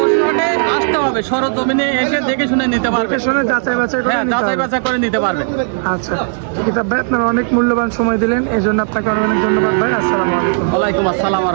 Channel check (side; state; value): left; silent; digital silence